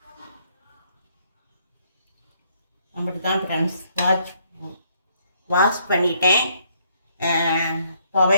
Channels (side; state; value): both; inverted; correlation -0.69